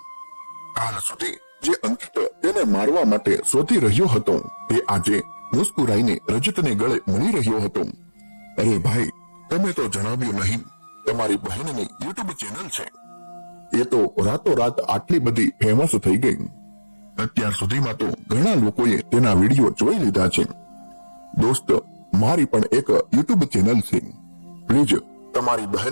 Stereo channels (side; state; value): both; inverted; correlation -1.00